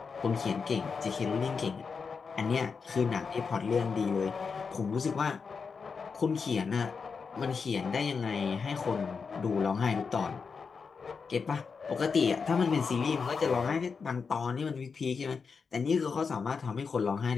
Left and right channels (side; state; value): right; quieter; 5.4 dB